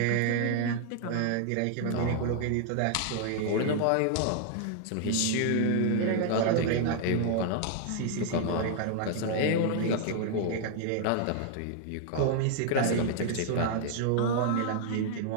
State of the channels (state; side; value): different; both; correlation 0.00